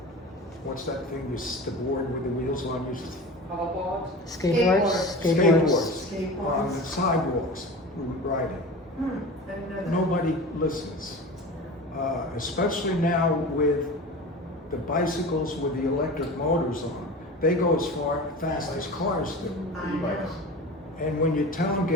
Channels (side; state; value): both; normal; correlation 0.33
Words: what's that thing, the board with the wheels on, Hoverboard? Skateboards? Skateboards. on the sidewalks riding. I didn't know that. Nobody listens. Especially now with the bicycles with the electric motors on. They go as fast as cars do. I know. And when you tell them